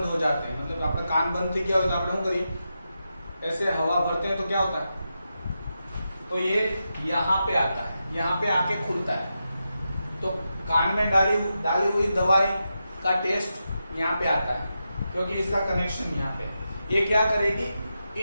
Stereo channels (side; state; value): both; inverted; correlation -0.88